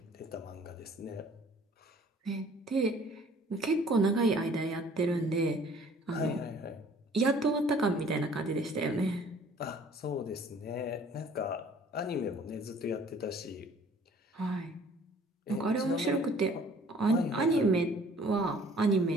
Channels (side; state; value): both; normal; correlation 0.54